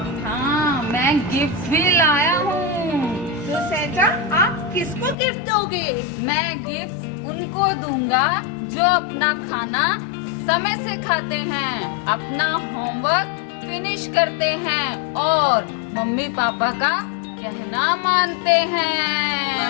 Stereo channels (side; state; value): right; drops out; at 5.2 s